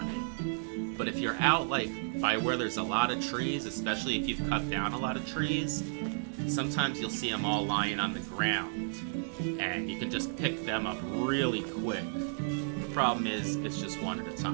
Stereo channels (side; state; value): left; silent; digital silence